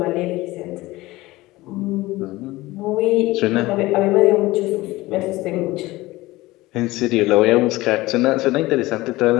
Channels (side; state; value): right; quieter; 19.2 dB